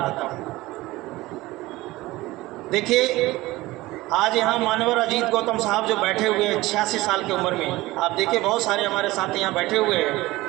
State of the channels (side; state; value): left; quieter; 19.1 dB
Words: हूँ। देखिए, आज यहाँ मानवर अजीत गौतम साहब जो बैठे हुए हैं 86 साल की उम्र में, आप देखिए बहुत सारे हमारे साथी यहाँ बैठे हुए